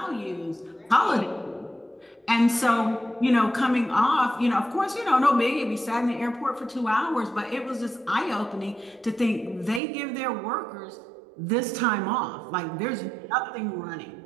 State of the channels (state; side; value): drops out; left; at 9.8 s